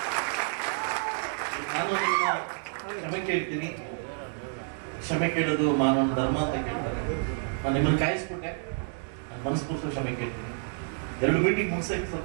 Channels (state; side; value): silent; left; 59 dB below the other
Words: ನಾನು ಕ್ಷಮೆ ಕೇಳ್ತೀನಿ. ಕ್ಷಮೆ ಕೇಳೋದು ಮಾನವ ಧರ್ಮ ಅಂತ ಕೇಳ್ತಾರೆ. ನಾನು ನಿಮ್ಮನ್ನು ಕಾಯಿಸ್ಬಿಟ್ಟೆ, ನನ್ನ ಮನಸ್ಪೂರ್ವಕ ಕ್ಷಮೆ ಕೇಳ್ತೀನಿ. 2 ಮೀಟಿಂಗ್ ಮುಗಿಸೋಕೆ